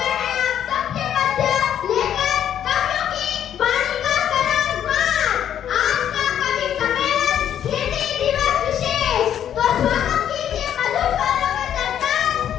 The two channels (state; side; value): quieter; right; 9.9 dB